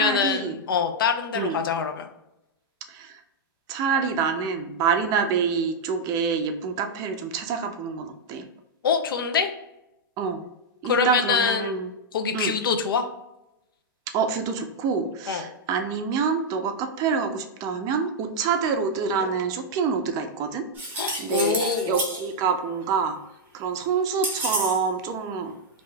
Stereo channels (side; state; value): both; normal; correlation -0.03